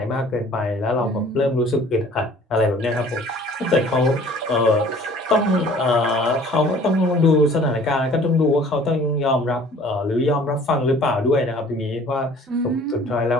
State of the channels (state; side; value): normal; both; correlation 0.51